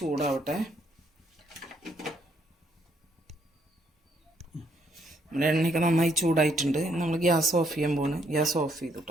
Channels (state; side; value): normal; both; correlation 0.71